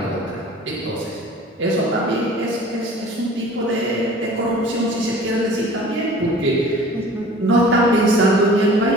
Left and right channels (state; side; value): normal; both; correlation 0.45